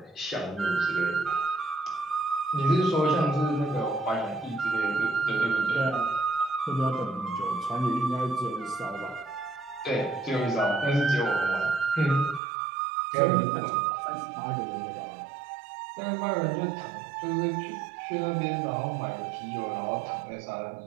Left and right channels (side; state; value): left; drops out; at 12.4 s